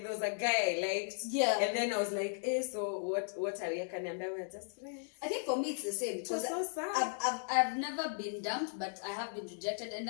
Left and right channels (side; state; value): right; silent; digital silence